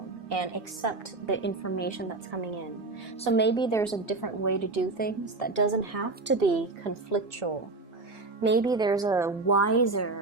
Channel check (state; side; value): quieter; left; 3.4 dB